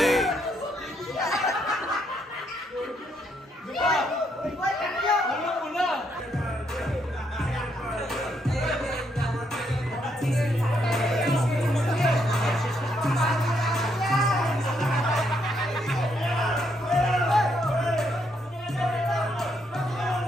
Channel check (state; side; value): normal; both; correlation 0.75